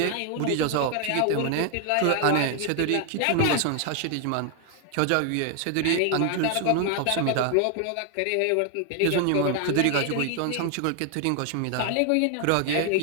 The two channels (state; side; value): different; both; correlation 0.00